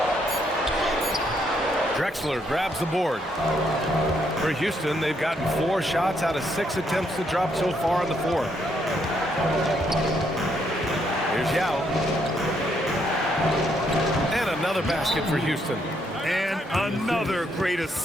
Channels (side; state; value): both; normal; correlation 0.74